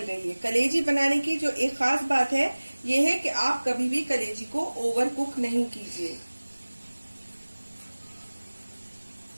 गई है। कलेजी बनाने की जो एक खास बात है ये है कि आप कभी भी कलेजी को ओवर कुक नहीं कीजिए।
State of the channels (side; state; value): both; inverted; correlation -1.00